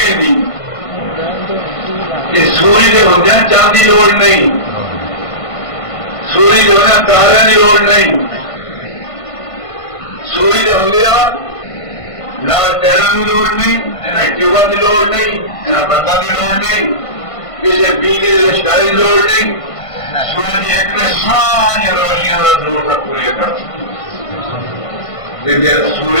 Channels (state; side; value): late; right; 1.5 ms